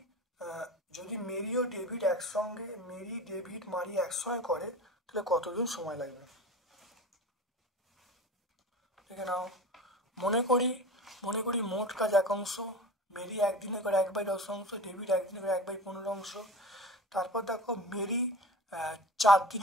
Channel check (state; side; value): normal; both; correlation 0.34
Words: যদি মেরি ডেভিড মারিয়া একসঙ্গে করে তাহলে কতদিন সময় লাগবে? দেখে নাও। মনে করি মোট কাজ 1 অংশ, মেরি একদিনে করে 1/10 অংশ, ডেভিড একদিনে করে 1/15 অংশ। তারপর দেখো মেরি 4